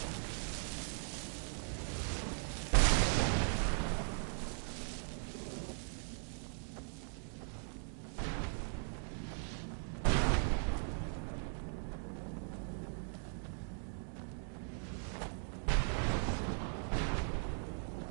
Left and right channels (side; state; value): left; silent; 51 dB below the other